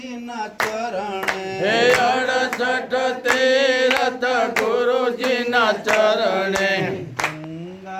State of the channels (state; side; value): identical; both; correlation 1.00